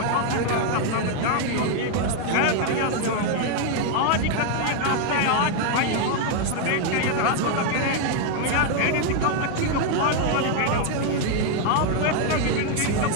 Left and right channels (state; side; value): different; both; correlation 0.00